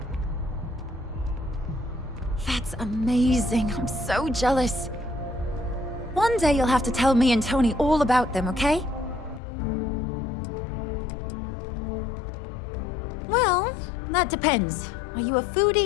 That's amazing. I'm so jealous. One day you'll have to tell me and Tony all about them, okay? Well, that depends. Are you a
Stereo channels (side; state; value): right; drops out; at 9.4 s